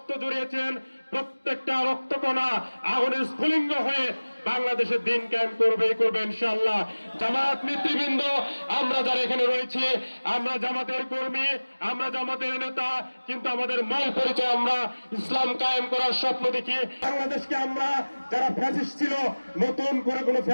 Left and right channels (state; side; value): inverted; both; correlation -1.00